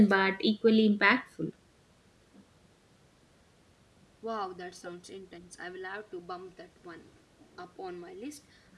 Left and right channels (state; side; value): identical; both; correlation 1.00